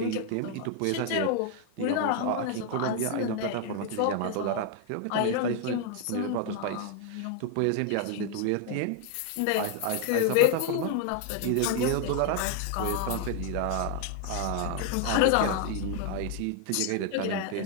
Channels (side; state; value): both; different; correlation 0.00